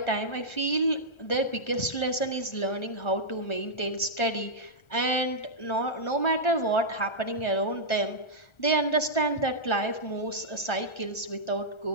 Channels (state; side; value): late; right; 1.4 ms